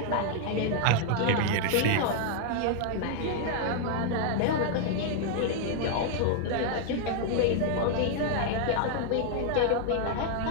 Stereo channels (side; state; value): both; different; correlation 0.00